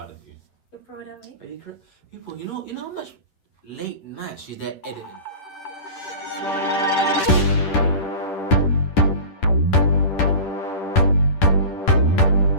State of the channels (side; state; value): right; late; 10 ms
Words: of you. You're proud of me? Are you correct? People, you know how much late night she's there editing?